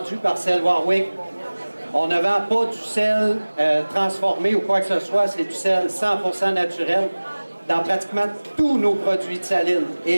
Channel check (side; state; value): both; inverted; correlation -1.00